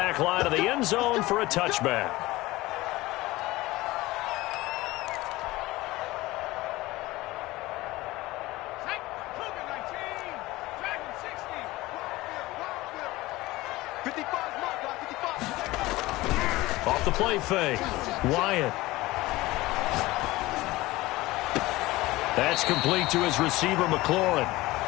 line of the end zone for a touchback. Off the play fake. Wyatt. That's complete to his receiver, McLaurin.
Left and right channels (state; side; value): quieter; right; 19.2 dB